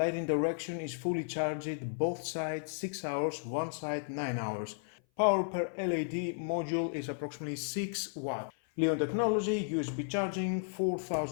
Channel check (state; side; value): silent; right; 55 dB below the other